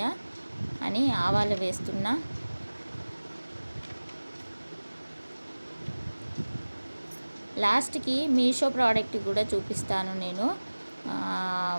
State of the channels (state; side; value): inverted; both; correlation -1.00